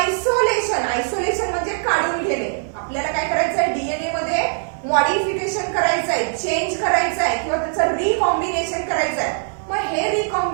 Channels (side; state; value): left; silent; 57 dB below the other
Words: Isolation म्हणजे काढून घेणे. आपल्याला काय करायचं आहे? DNA मध्ये modification करायचं आहे, चेंज करायचं आहे किंवा त्याचं रिकॉम्बिनेशन करायचं आहे. मग हे